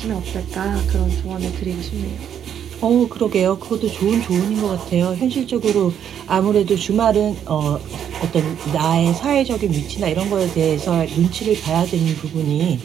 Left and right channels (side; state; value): left; quieter; 9.1 dB